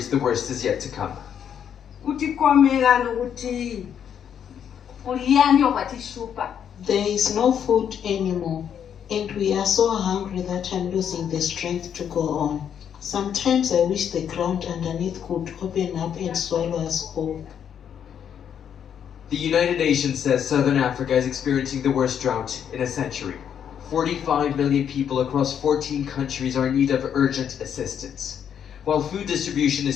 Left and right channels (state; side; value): quieter; right; 8.6 dB